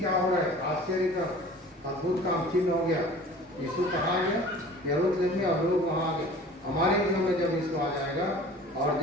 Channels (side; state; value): both; normal; correlation 0.44